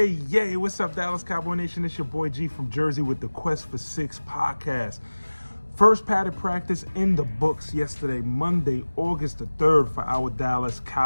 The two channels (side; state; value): both; inverted; correlation -1.00